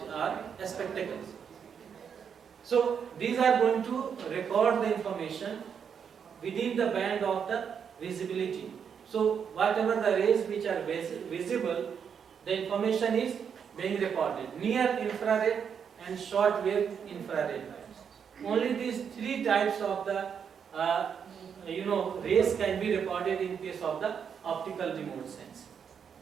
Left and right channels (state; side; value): quieter; left; 7.2 dB